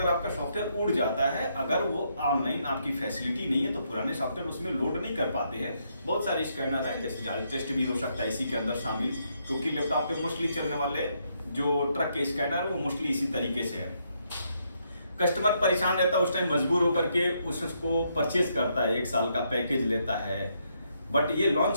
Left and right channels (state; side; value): inverted; both; correlation -0.76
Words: आपका सॉफ्टवेयर उड़ जाता है, अगर वो ऑनलाइन आपकी फैसिलिटी नहीं है तो पुराने सॉफ्टवेयर उसमें लोड नहीं कर पाते हैं। बहुत सारे स्कैनर हैं, जैसे जाल टेस्ट भी हो सकता है इसी के अंदर शामिल, क्योंकि लैपटॉप पे मोस्टली चलने वाले जो ट्रक के स्कैनर है वो मोस्टली इसी तरीके से है। कस्टमर परेशान रहता है, उस टाइम मजबूर होकर के उसको परचेज करता है, 1 साल का पैकेज लेता है। बट ये